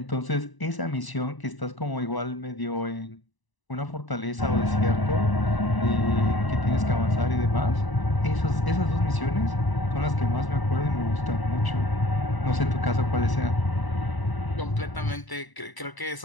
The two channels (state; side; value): late; right; 1.0 ms